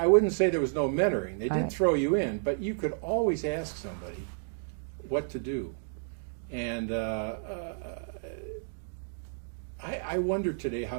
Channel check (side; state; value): left; silent; digital silence